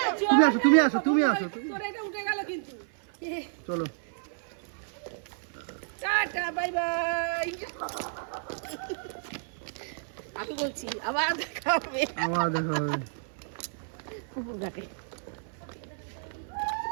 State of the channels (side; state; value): left; silent; 57 dB below the other